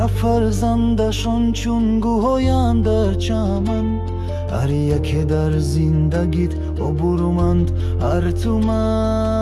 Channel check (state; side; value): identical; both; correlation 1.00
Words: فرزندشون چون گوهایند در چمن هر یکی در زندگیت عبورمند هر